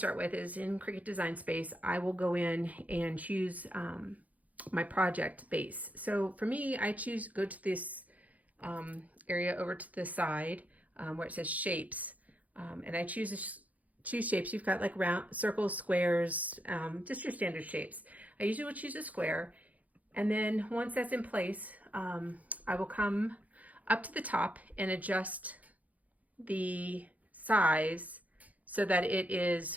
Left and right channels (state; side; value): late; left; 0.074 ms